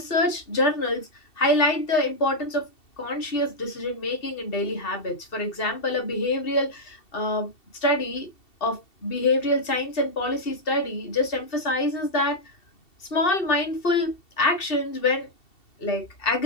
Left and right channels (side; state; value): right; late; 2.7 ms